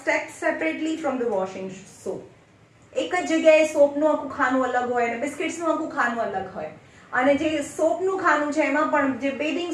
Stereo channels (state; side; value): identical; both; correlation 1.00